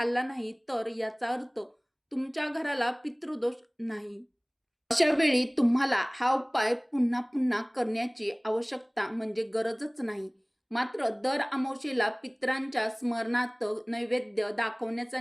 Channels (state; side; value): identical; both; correlation 1.00